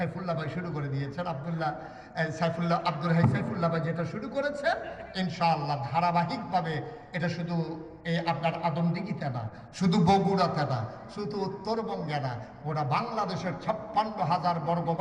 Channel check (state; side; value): identical; both; correlation 1.00